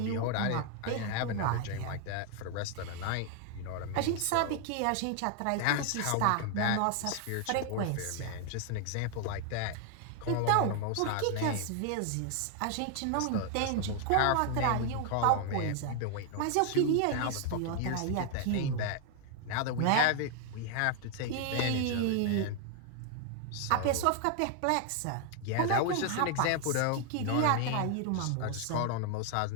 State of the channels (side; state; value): both; different; correlation 0.00